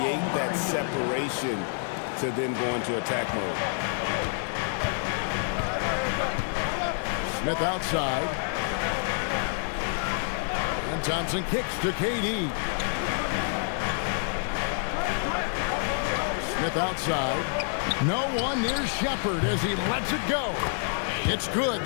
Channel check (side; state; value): right; silent; 59 dB below the other